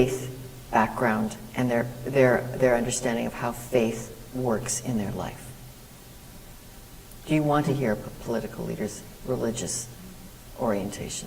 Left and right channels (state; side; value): identical; both; correlation 1.00